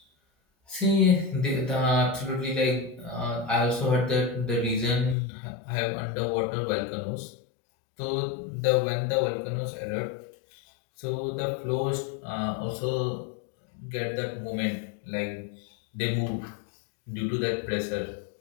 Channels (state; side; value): drops out; right; at 5.2 s